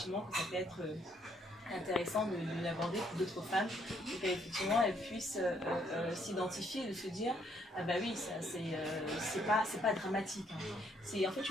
que ça peut être intéressant de l'aborder pour d'autres femmes, pour qu'effectivement elles puissent s'identifier et de se dire ah bah oui, ça c'est pas dramatique, hein. C'est en fait,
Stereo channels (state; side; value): normal; both; correlation 0.69